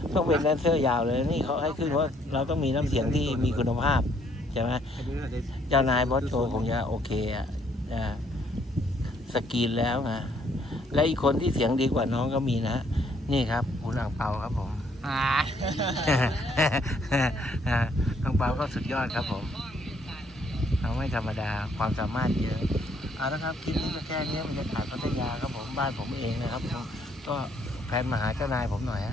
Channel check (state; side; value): normal; both; correlation 0.67